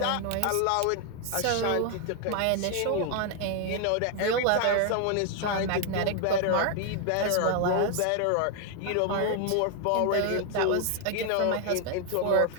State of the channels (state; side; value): different; both; correlation 0.00